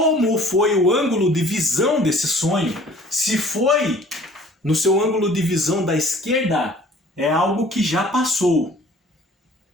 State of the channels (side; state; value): both; normal; correlation 0.52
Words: foi o ângulo de visão desse sonho, se foi no seu ângulo de visão da esquerda, é algo que já passou.